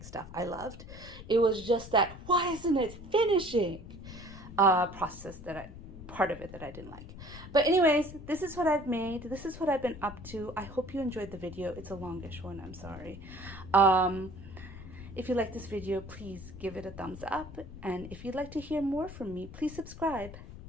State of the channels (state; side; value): noise; left; rumble, 14 dB below the sound